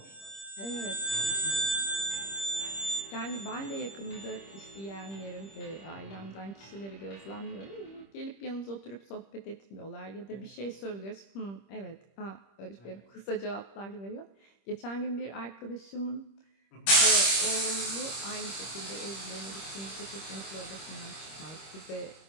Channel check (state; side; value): late; right; 25 ms